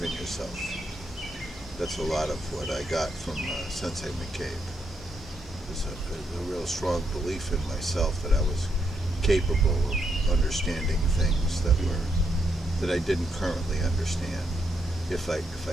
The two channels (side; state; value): both; normal; correlation 0.79